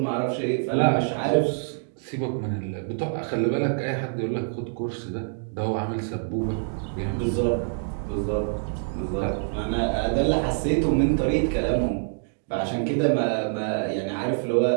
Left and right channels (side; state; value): left; silent; digital silence